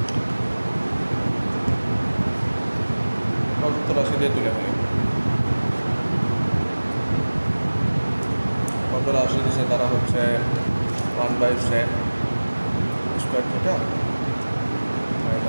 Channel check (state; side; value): inverted; both; correlation -1.00